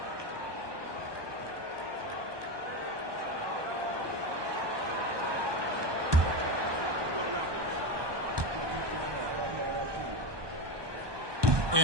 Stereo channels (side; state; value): left; late; 1.2 ms